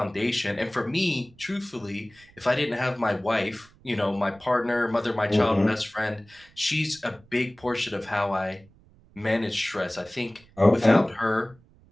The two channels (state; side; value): noise; right; rumble, 27 dB below the sound